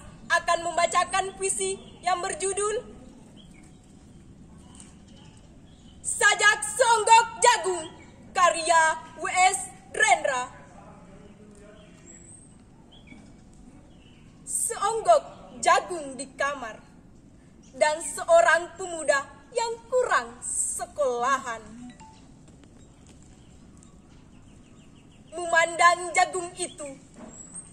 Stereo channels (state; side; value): identical; both; correlation 1.00